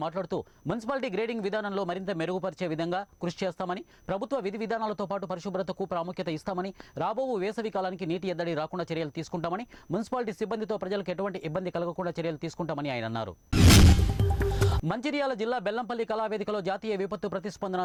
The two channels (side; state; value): both; identical; correlation 1.00